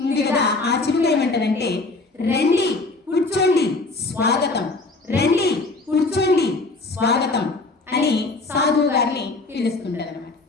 ఉంది కదా, ఆ చిలుక ఏమంటారంటే రండి కూర్చోండి స్వాగతం, రండి కూర్చోండి స్వాగతం అని సాధువు గారిని పిలుస్తుంటారు అన్నమాట.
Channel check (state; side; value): quieter; right; 3.4 dB